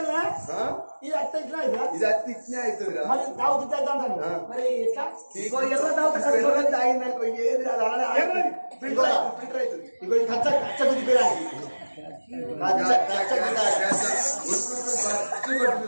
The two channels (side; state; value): both; inverted; correlation -1.00